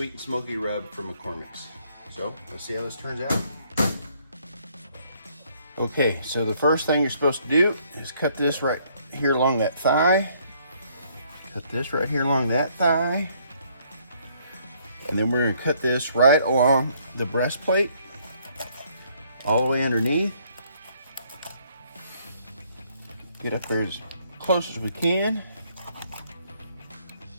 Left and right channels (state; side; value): inverted; both; correlation -0.66